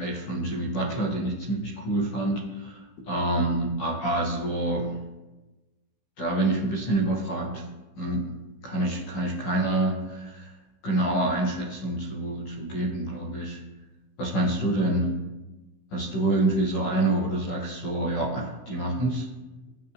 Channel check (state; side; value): late; right; 16 ms